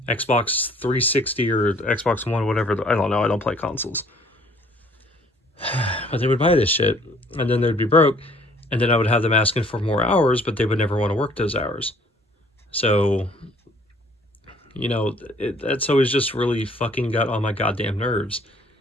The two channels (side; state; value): both; normal; correlation 0.58